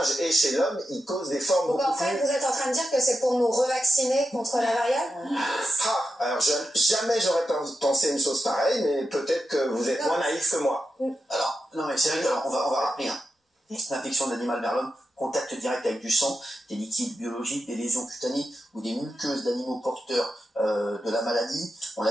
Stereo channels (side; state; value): both; normal; correlation 0.89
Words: Et chez l'homme, il cause des formes Donc beaucoup en fait, plus... vous êtes en train de dire que c'est pour nous revacciner contre la variole? Alors jamais j'aurais pensé une chose pareille, mais peut-être que vous êtes moins naïf que moi. Alors, non mais c'est vrai qu'on va rappeler, hein. L'infection de l'animal vers l'homme, contact direct avec du sang, des liquides biologiques, des lésions cutanées ou des muqueuses d'animaux porteurs de la maladie. On